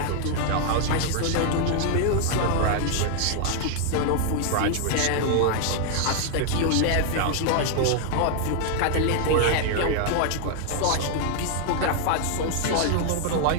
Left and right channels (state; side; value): different; both; correlation 0.00